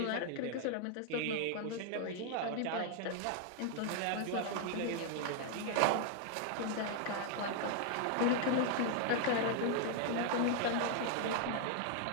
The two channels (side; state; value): both; different; correlation 0.00